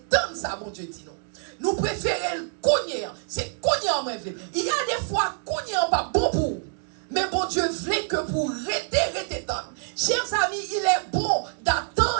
ça, bon Dieu dit non. Nous préférons le cogner, c'est cogner en même. Il y a des fois, cogner pas bon pour. Mais bon Dieu voulait que pour rester tant. Chers amis, il est bon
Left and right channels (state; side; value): silent; left; 61 dB below the other